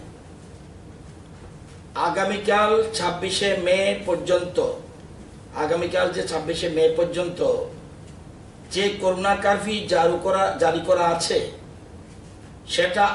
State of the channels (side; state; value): both; identical; correlation 1.00